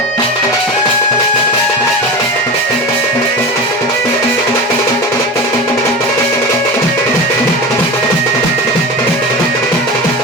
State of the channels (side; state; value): both; normal; correlation 0.27